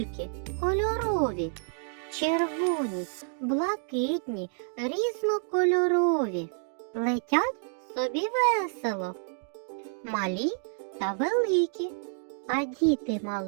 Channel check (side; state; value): left; silent; 59 dB below the other